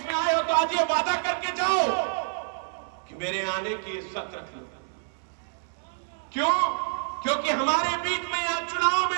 में आए हो तो आज ये वादा करके जाओ कि मेरे आने की इज्जत रख लो। क्यों? क्योंकि हमारे बीच में यहां चुनाव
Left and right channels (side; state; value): left; silent; 60 dB below the other